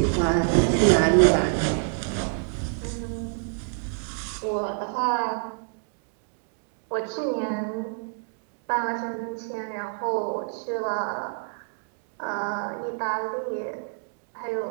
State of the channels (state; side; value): silent; left; 60 dB below the other